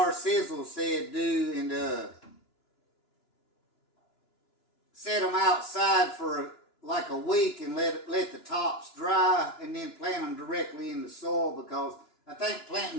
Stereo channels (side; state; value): right; late; 2.9 ms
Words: Sizzle said do, and set them outside for like a week and let the tops dry and then plant them directly in the soil, because I think planting